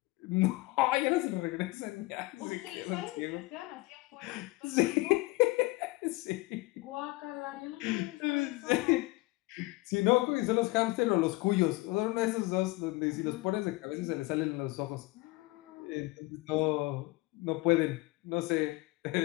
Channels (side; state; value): right; quieter; 22.0 dB